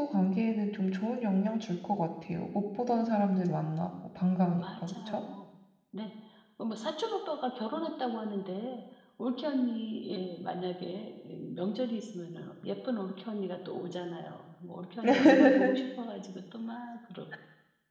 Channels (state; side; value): identical; both; correlation 1.00